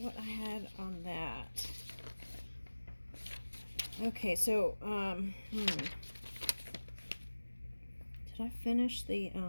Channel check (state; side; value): inverted; both; correlation -1.00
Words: I had on that. Okay, so did I finish the